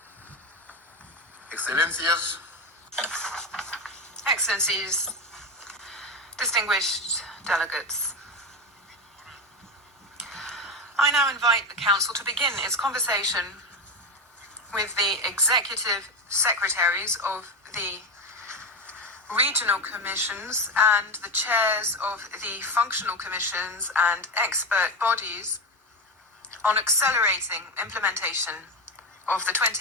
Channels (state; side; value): normal; both; correlation 0.17